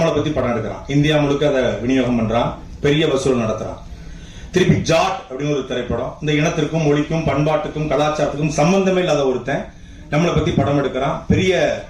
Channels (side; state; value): both; identical; correlation 1.00